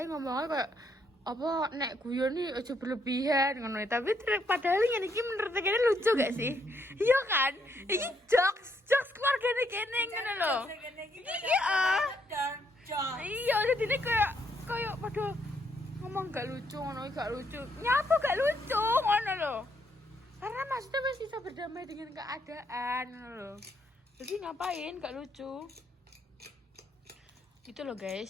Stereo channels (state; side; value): normal; both; correlation 0.74